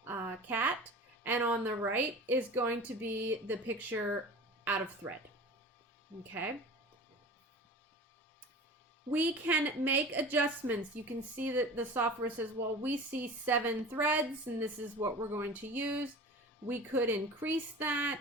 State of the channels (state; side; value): normal; both; correlation 0.37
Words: cat, and on the right is going to be the picture out of thread. Okay. We can make adjustments. You can see that the software says, well, we see 7 threads and this is what we're going to use. We could increase